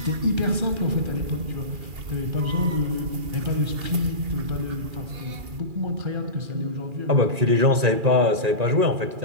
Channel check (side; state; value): left; late; 2.4 ms